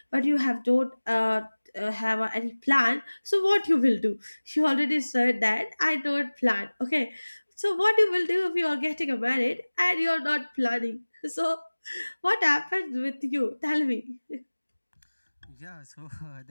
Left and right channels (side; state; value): both; inverted; correlation -1.00